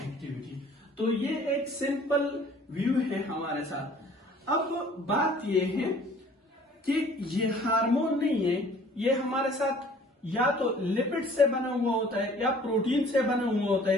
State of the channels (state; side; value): normal; both; correlation 0.53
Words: तो ये एक सिंपल व्यू है हमारे साथ। अब बात ये है कि ये हार्मोन नहीं है, ये हमारे साथ या तो लिपिड से बना हुआ होता है या प्रोटीन से बना हुआ होता